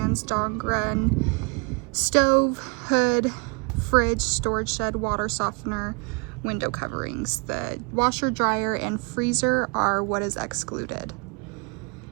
dog run, stove, hood, fridge, storage shed, water softener, window coverings. The washer, dryer, and freezer are what is excluded.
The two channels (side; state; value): left; quieter; 32.8 dB